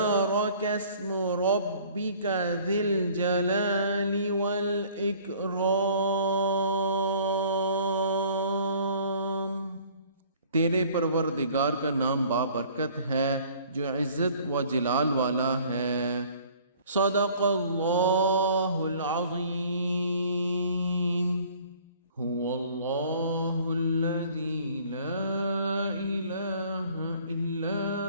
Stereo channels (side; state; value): both; inverted; correlation -0.53